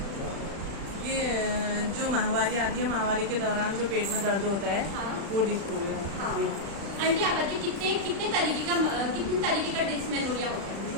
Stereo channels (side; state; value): left; late; 35 ms